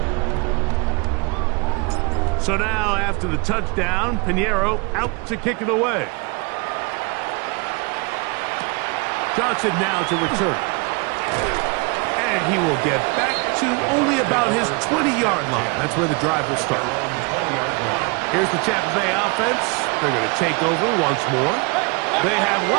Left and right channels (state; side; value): quieter; left; 30.0 dB